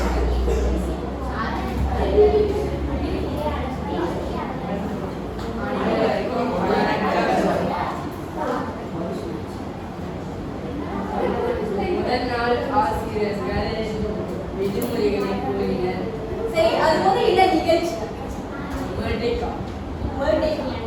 முதல் நாள் ஆசிரியர்கள் விடுமுறைகளை கூறினர். சரி, அது போது என்ன நிகழ்ச்சி? பர்த்டே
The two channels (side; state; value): both; identical; correlation 1.00